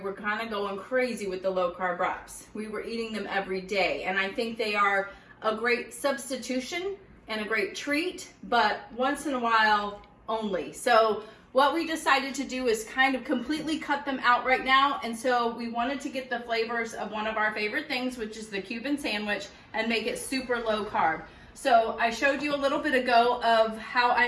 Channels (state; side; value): identical; both; correlation 1.00